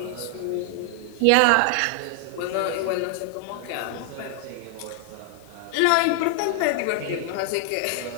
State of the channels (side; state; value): both; different; correlation 0.00